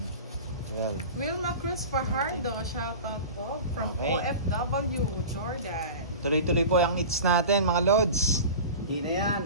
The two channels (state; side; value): inverted; both; correlation -0.34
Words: 12. Wilma Cruz Fajardo, shoutout po from OFW, Jordan. Tuloy-tuloy po yung hits natin, mga lods. Hindi na yan.